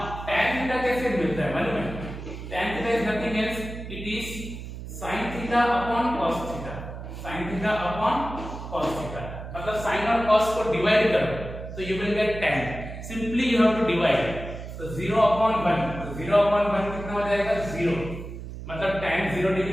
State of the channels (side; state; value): right; noise; hum, 10 dB below the sound